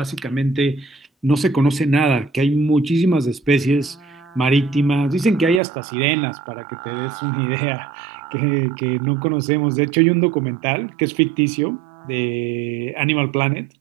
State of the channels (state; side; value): drops out; left; at 5.6 s